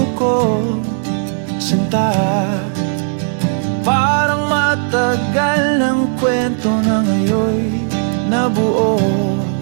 ko. Sinta, parang matagal ng kwento na ngayon nabuo.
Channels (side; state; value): left; silent; 69 dB below the other